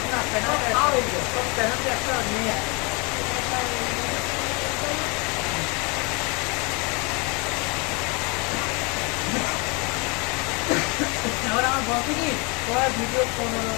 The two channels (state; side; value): quieter; right; 30.2 dB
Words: একটা নিয়ে এবার আমার বলছে কি তোরা ভিডিও